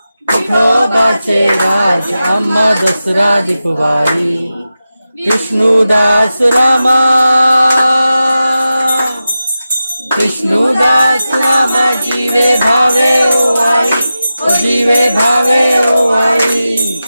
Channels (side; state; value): both; inverted; correlation -0.93